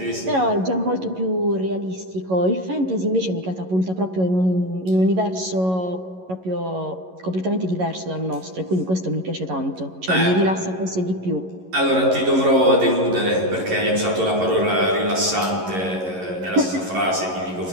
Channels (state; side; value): late; left; 11 ms